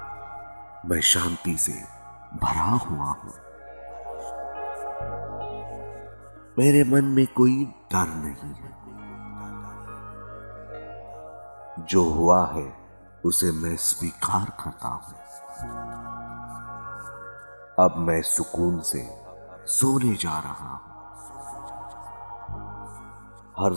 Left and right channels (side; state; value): both; inverted; correlation -1.00